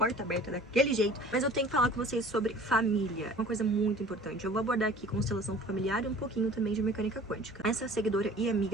aberta daquele jeito. Mas eu tenho que falar com vocês sobre família, uma coisa muito importante. Eu vou abordar aqui constelação familiar e um pouquinho também de mecânica quântica. Essa seguidora e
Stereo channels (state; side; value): normal; both; correlation 0.46